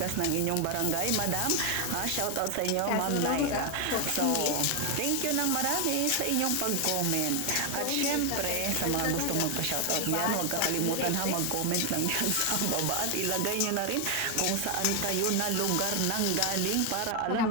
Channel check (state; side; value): different; both; correlation 0.00